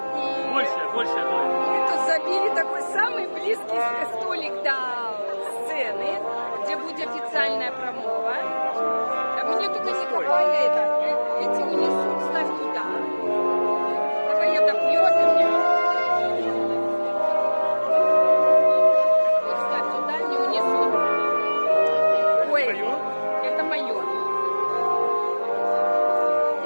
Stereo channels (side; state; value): both; inverted; correlation -1.00